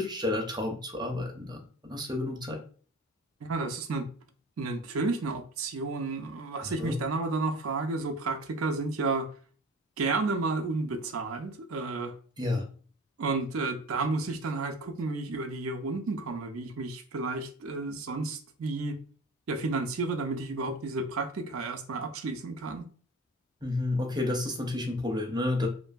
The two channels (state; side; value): normal; both; correlation 0.41